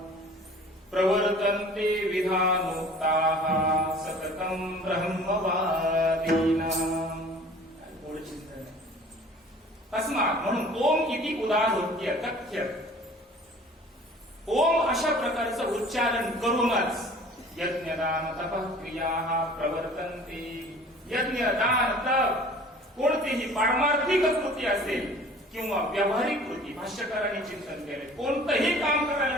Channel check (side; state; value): both; normal; correlation 0.47